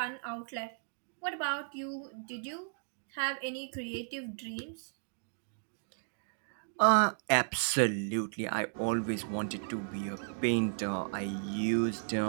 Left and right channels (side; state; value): left; silent; digital silence